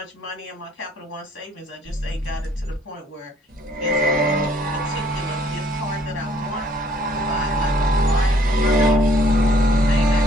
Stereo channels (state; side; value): normal; both; correlation 0.62